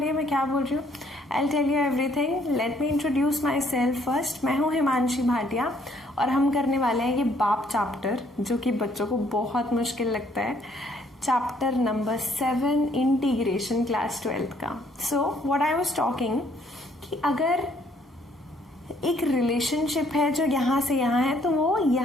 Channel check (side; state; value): both; normal; correlation 0.65